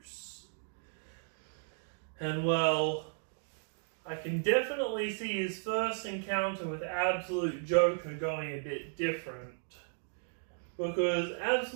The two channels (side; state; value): left; silent; digital silence